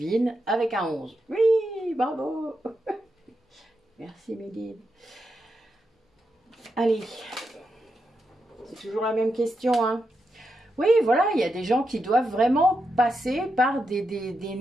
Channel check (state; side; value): normal; both; correlation 0.86